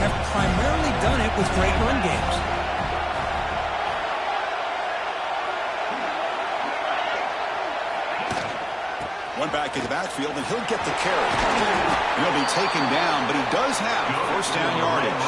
primarily done it with great run games. One back in the backfield, and he'll get the carry. He'll be taken down, but he does have first down yardage.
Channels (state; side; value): identical; both; correlation 1.00